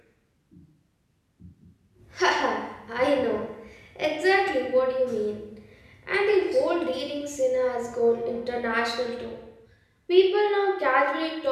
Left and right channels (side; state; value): both; identical; correlation 1.00